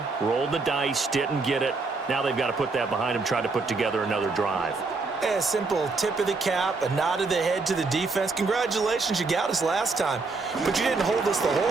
rolled the dice, didn't get it. Now they've got to put that behind them, try to put together another drive. A simple tip of the cap, a nod of the head to the defense. Congratulations, you got us last time. But you didn't hold us the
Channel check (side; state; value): left; quieter; 4.0 dB